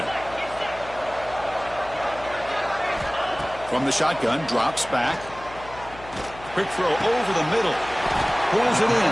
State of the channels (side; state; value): left; noise; hum, 17 dB below the sound